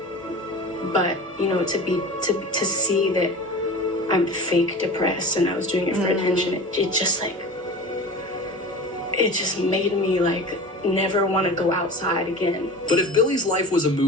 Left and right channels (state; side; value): normal; both; correlation 0.34